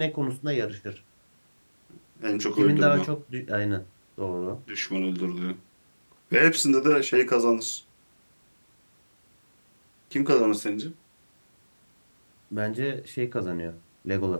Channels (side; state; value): both; inverted; correlation -1.00